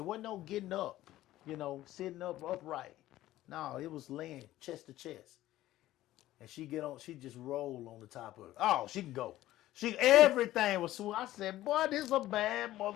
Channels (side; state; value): right; quieter; 15.0 dB